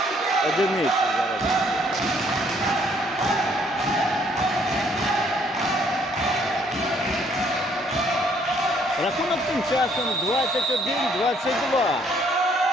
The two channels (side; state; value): both; normal; correlation 0.65